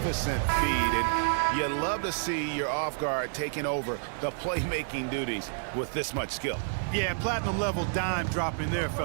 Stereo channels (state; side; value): silent; left; 57 dB below the other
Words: feed, and you love to see your off guard taking over the playmaking duties with this much skill. Yeah, platinum level dime dropping there,